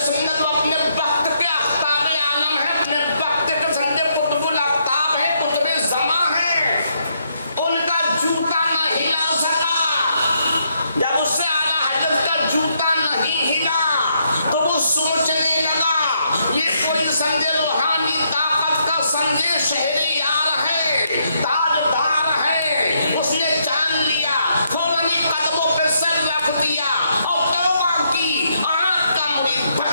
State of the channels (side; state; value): both; inverted; correlation -0.75